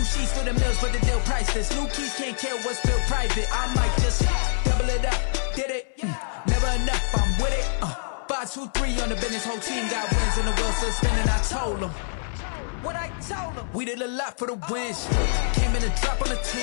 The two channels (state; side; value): silent; right; 62 dB below the other